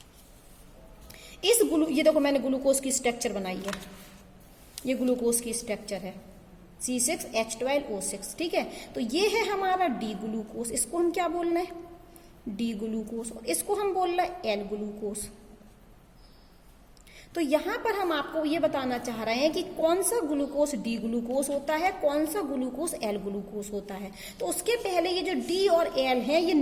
ये देखो मैंने ग्लूकोज की स्ट्रक्चर बनाई है, ये ग्लूकोज की स्ट्रक्चर है C6H12O6। ठीक है, तो ये है हमारा डी ग्लूकोज, इसको हम क्या बोलना है? D glucose. और इसको हम बोलना है एल ग्लूकोज। तो यहां पर हम आपको ये बताना चाह रहे हैं कि कौन सा ग्लूकोज डी ग्लूकोज होता है, कौन सा ग्लूकोज एल ग्लूकोज होता है। तो उसके पहले ये जो डी और एल है, ये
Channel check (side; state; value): both; identical; correlation 1.00